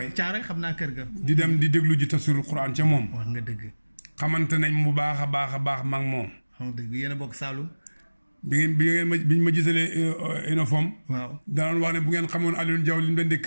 Caaroy xam naa kër ga. di dem di déglu ji tafsirul Qur'an ca moom. wax nga dëgg. xamante nañ bu baax a baax a baax mag moom. xam nga dëgg yéen a bokk Saalum. biñ ma gisalee uniforme. waaw danoon wax ne bu ngeen xamoon Alioune Diaw li mu leen di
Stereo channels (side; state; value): both; inverted; correlation -1.00